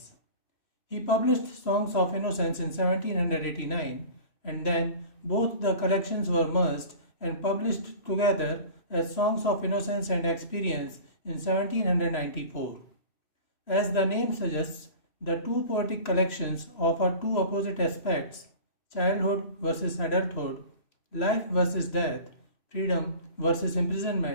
He published Songs of Innocence in 1789, and then both the collections were merged and published together as Songs of Innocence and Experience in 1794. As the name suggests, the two poetic collections offer two opposite aspects: childhood versus adulthood, life versus death, freedom versus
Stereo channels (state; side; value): late; right; 3.0 ms